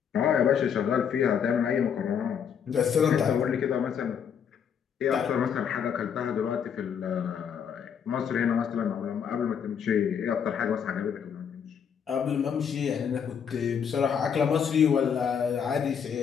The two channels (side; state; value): right; quieter; 7.6 dB